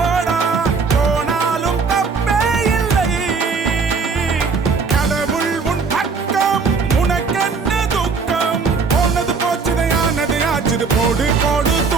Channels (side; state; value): left; quieter; 4.9 dB